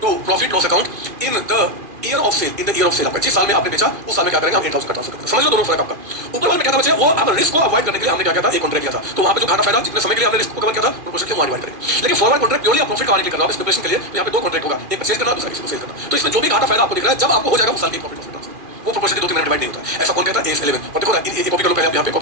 to profit loss account in the year of sale, in the year of sale. आपका जिस साल में आपने बेचा उस साल में क्या करेंगे? हम 8000 का ट्रांसफर करेंगे। समझ लो दोनों फर्क आपका। ऊपर वाले में क्या था बच्चे? वो आप रिस्क को अवॉइड करने के लिए हमने क्या किया था? एक कॉन्ट्रैक्ट किया था। तो वहां पे जो घाटा फायदा जितने समय के लिए हमने रिस्क को कवर किया था प्रोपोर्शनली हम डिवाइड करेंगे। लेकिन फॉरवर्ड कॉन्ट्रैक्ट प्योरली आप प्रॉफिट कमाने के लिए कर रहे हो, स्पेकुलेशन के लिए। तो यहाँ पे दो कॉन्ट्रैक्ट होगा, एक परचेज करना, दूसरा किसी को सेल करना। तो इसमें जो भी घाटा फायदा आपको दिख रहा है, जब आपको हो जाएगा उस साल की प्रॉफिट वो प्रोपोर्शनली 2-3 डिवाइड नहीं होता। ऐसा कौन कहता है? AS11। और देखो ना ये कॉपी करो, पहले आप यहाँ पे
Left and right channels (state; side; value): late; left; 2.4 ms